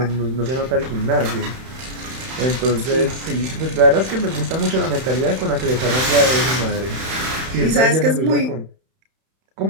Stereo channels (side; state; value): left; late; 31 ms